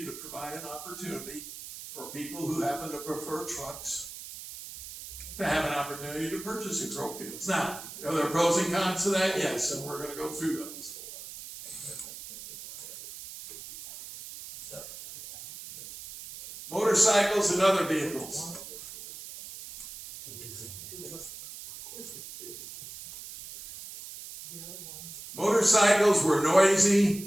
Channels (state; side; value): noise; right; hiss, 12 dB below the sound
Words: to provide an opportunity for people who happen to prefer trucks to have an opportunity to purchase in Crowfields. Now, are there pros and cons to that? Yes, and we're going to go through those. Motorcycles and other vehicles. Motorcycles were